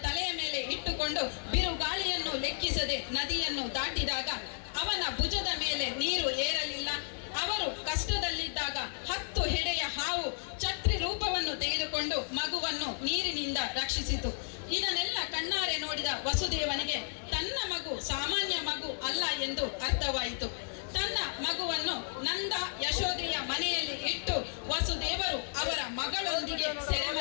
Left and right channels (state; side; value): silent; right; digital silence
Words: ತಲೆಯ ಮೇಲೆ ಇಟ್ಟುಕೊಂಡು ಬಿರುಗಾಳಿಯನ್ನು ಲೆಕ್ಕಿಸದೆ ನದಿಯನ್ನು ದಾಟಿದಾಗ ಅವನ ಭುಜದ ಮೇಲೆ ನೀರು ಏರಲಿಲ್ಲ. ಅವರು ಕಷ್ಟದಲ್ಲಿದ್ದಾಗ 10 ಹೆಡೆಯ ಹಾವು ಛತ್ರಿ ರೂಪವನ್ನು ತೆಗೆದುಕೊಂಡು ಮಗುವನ್ನು ನೀರಿನಿಂದ ರಕ್ಷಿಸಿತು. ಇದನ್ನೆಲ್ಲ ಕಣ್ಣಾರೆ ನೋಡಿದ ವಸುದೇವನಿಗೆ ತನ್ನ ಮಗು ಸಾಮಾನ್ಯ ಮಗು ಅಲ್ಲ ಎಂದು ಅರ್ಥವಾಯಿತು. ತನ್ನ ಮಗುವನ್ನು ನಂದ ಯಶೋದೆಯ ಮನೆಯಲ್ಲಿ ಇಟ್ಟು ವಸುದೇವರು ಅವರ ಮಗಳೊಂದಿಗೆ